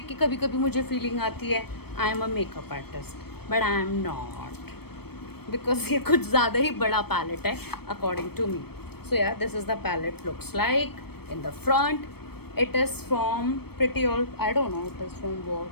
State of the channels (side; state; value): right; late; 0.96 ms